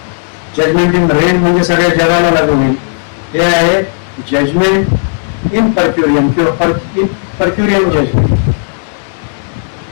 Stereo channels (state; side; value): silent; right; digital silence